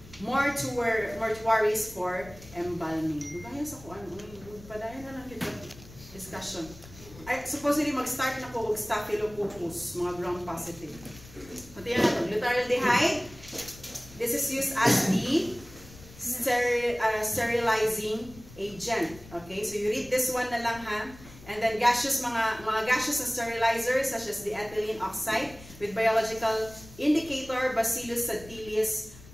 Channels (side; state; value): left; noise; rumble, 19 dB below the sound